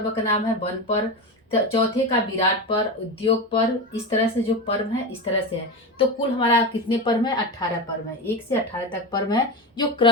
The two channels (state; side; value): normal; both; correlation 0.20